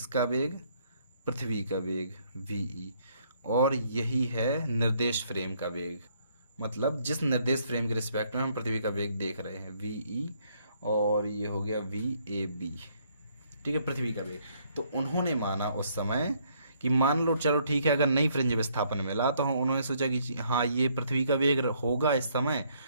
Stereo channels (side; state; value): both; inverted; correlation -0.68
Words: वेग? पृथ्वी का वेग वी, और यही है निर्देश फ्रेम का वेग। मतलब जिस निर्देश फ्रेम के रिस्पेक्ट में हम पृथ्वी का वेग देख रहे हैं वी, और ये हो गया वी ए बी, ठीक है, पृथ्वी का वेग। तो उन्होंने माना उस समय कि मान लो चलो ठीक है, अगर नई फ्रिंज विस्थापन मिला तो उन्होंने सोचा कि हाँ ये पृथ्वी का वेग होगा इस समय,